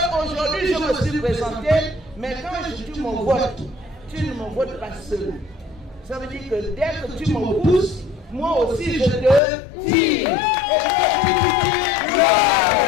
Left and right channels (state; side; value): drops out; right; at 9.4 s